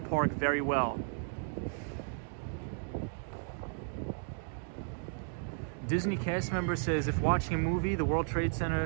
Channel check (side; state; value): left; silent; 55 dB below the other